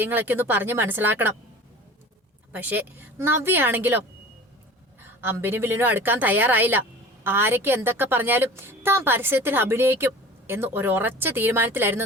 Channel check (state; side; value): normal; both; correlation 0.40